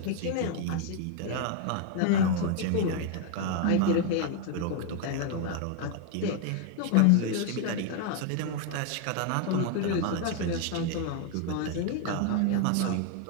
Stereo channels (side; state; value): both; different; correlation 0.00